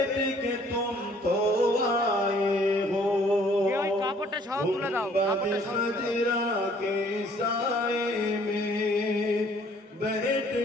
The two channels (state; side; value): normal; both; correlation 0.59